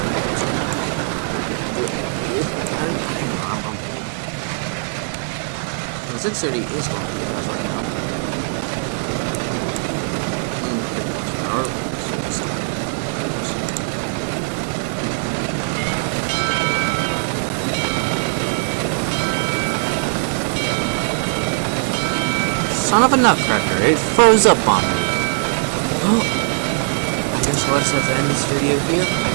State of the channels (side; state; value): left; silent; 65 dB below the other